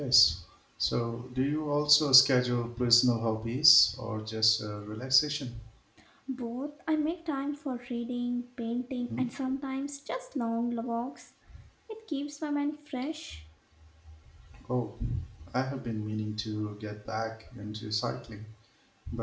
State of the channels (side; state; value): both; identical; correlation 1.00